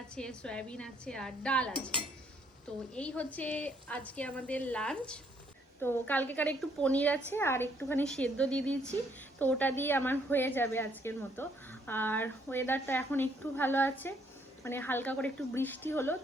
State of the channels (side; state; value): both; normal; correlation 0.68